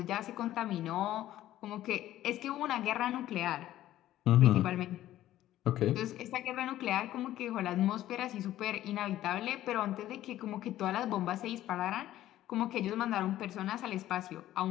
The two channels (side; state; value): right; quieter; 13.7 dB